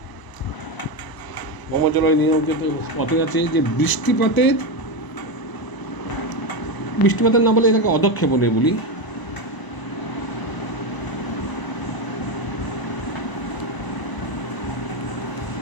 ভৌমজলের নিয়ন্ত্রিত পথে আছে যে বৃষ্টিপাতের না বলে এটাকে অধক্ষেপণে বলি।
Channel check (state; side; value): late; right; 1.0 ms